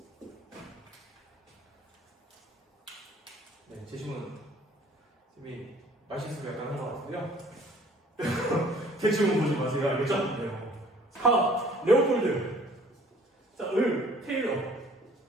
네, 제시문 선생님이 말실수가 약간 한 것 같은데요. 대충 보지 마세요. 알겠죠? 네. 4. 레오폴드. 자, 테일러.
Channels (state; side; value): normal; both; correlation 0.54